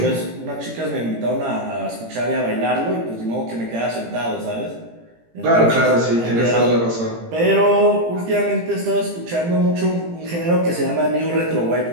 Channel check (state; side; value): late; left; 18 ms